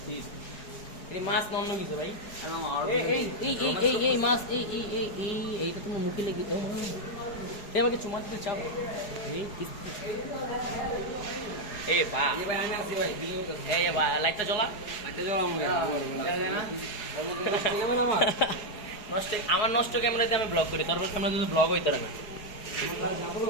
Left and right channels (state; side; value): late; right; 4.8 ms